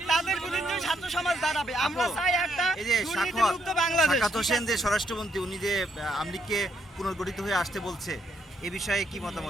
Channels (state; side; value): normal; both; correlation 0.74